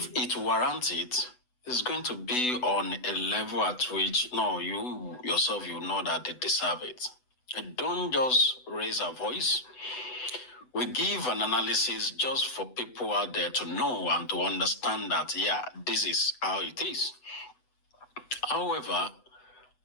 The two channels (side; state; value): right; late; 8.0 ms